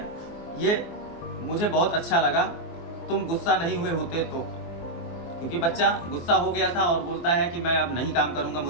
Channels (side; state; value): right; late; 24 ms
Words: ये मुझे बहुत अच्छा लगा। तुम गुस्सा नहीं हुए होते तो, क्योंकि बच्चा गुस्सा हो गया था और बोलता है कि मैं अब नहीं काम करूंगा,